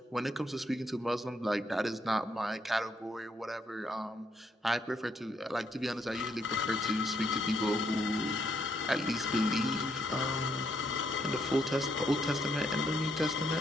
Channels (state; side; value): normal; both; correlation 0.74